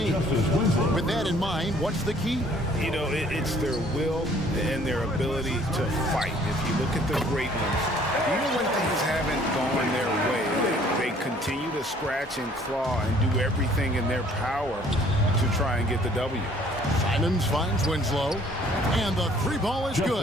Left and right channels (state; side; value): normal; both; correlation 0.58